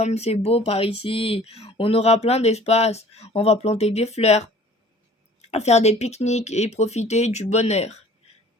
c'est beau par ici. On aura plein d'espace. On va planter des fleurs, faire des pique-niques et profiter du bonheur.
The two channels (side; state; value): both; normal; correlation 0.50